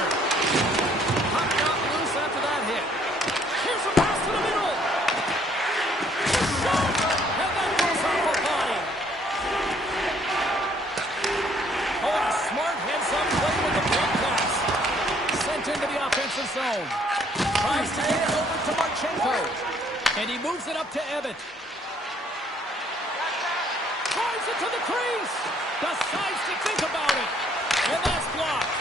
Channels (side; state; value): both; normal; correlation 0.64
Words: Puck got loose after that hit. Here's a pass to the middle. Shot! And that goes off a body. Oh, a smart heads-up play with the big pass. Sent into the offensive zone. Tries to get it over to Marchenko. And he moves it up to Ebbett. Drives it to the crease. Decides to think about it. And that's blocked.